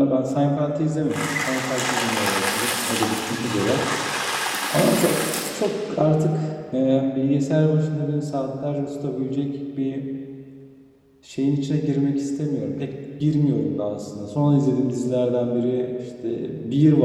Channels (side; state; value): both; identical; correlation 1.00